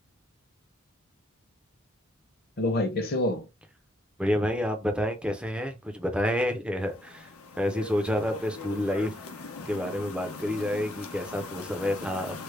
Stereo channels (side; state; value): both; normal; correlation 0.72